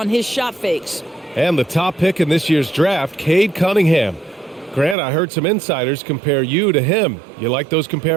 his shot fakes. And the top pick in this year's draft, Cade Cunningham. Grant, I heard some insiders compare you to him. You like those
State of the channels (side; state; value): left; drops out; at 5.0 s